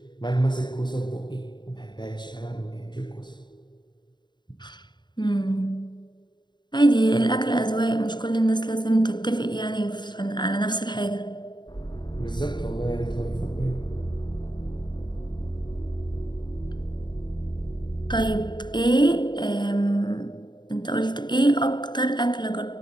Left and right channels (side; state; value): right; late; 0.22 ms